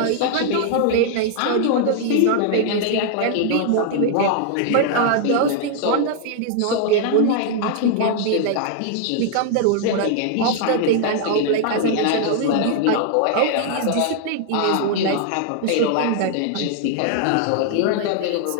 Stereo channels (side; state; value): both; different; correlation 0.00